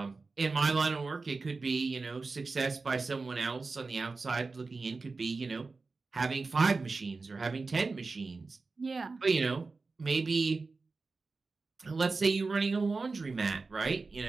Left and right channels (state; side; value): quieter; left; 4.0 dB